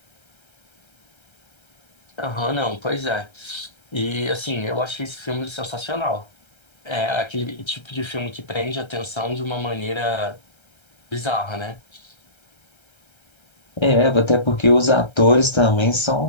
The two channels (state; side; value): late; right; 1.3 ms